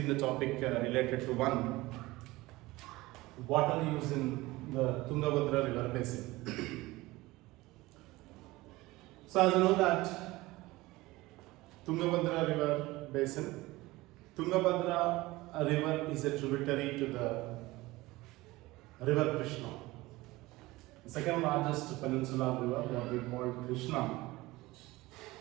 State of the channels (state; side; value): quieter; left; 19.9 dB